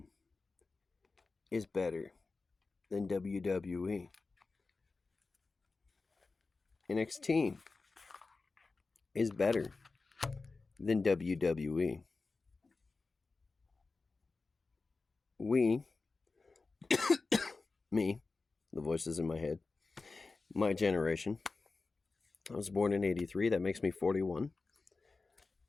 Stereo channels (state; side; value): quieter; right; 3.9 dB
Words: is better than WWE. NXT is better than WWE. Me, the voices in my head, my generation. I was born in 83. That makes me 41.